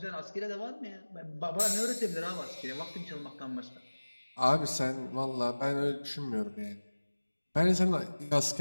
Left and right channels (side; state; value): both; inverted; correlation -1.00